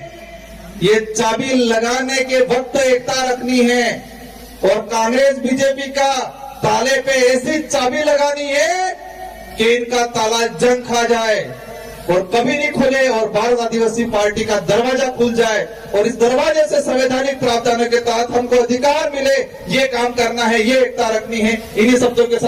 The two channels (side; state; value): both; identical; correlation 1.00